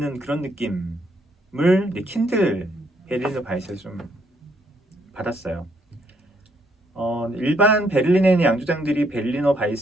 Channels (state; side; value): normal; both; correlation 0.71